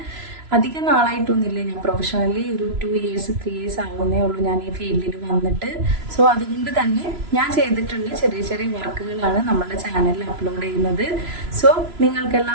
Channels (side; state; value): left; late; 3.0 ms